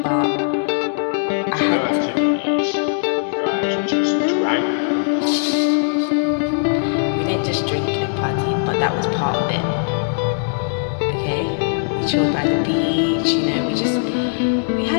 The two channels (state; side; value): silent; right; digital silence